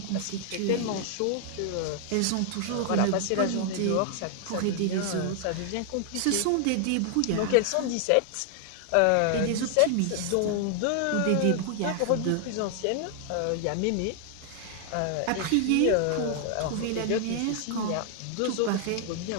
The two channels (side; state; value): both; different; correlation 0.00